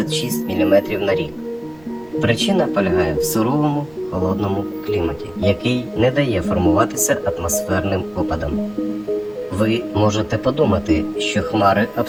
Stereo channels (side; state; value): right; noise; rumble, 27 dB below the sound